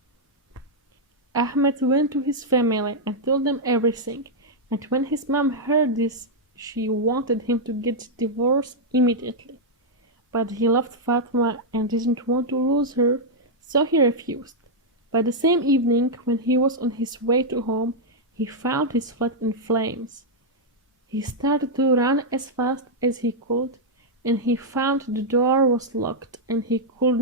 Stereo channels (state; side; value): normal; both; correlation -0.05